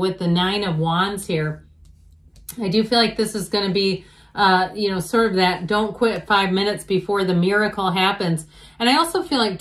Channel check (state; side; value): identical; both; correlation 1.00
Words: the Nine of Wands here, I do feel like this is going to be, sort of that don't quit 5 minutes before the miracle happens. And I also feel like,